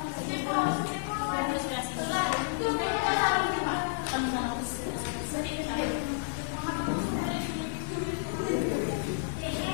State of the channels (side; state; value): right; silent; 57 dB below the other